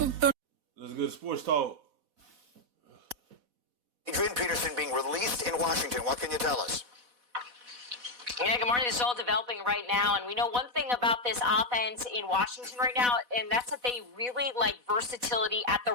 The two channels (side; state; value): left; late; 4.1 ms